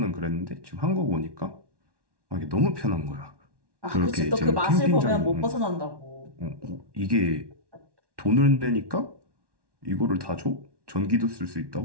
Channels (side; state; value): left; late; 1.1 ms